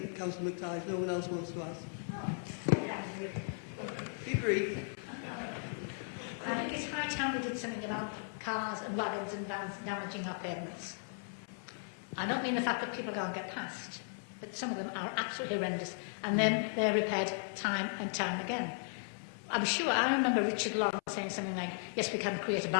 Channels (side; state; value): right; silent; 54 dB below the other